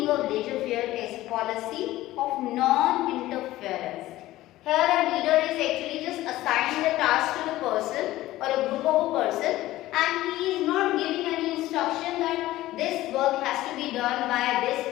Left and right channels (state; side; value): quieter; right; 16.1 dB